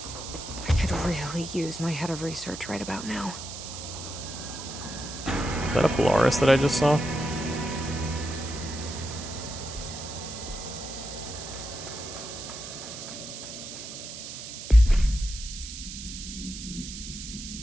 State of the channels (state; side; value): noise; right; hiss, 9 dB below the sound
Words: I could really use my head of research right about now. Is that a Polaris that I just saw?